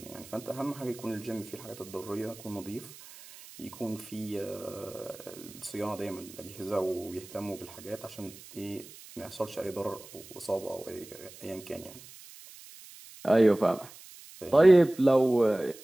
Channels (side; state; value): right; noise; hiss, 18 dB below the sound